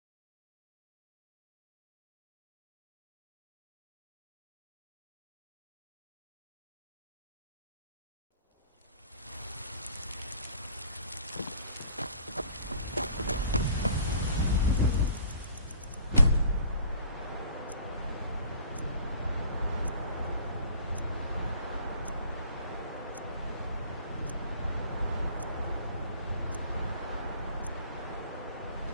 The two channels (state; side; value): inverted; both; correlation -0.50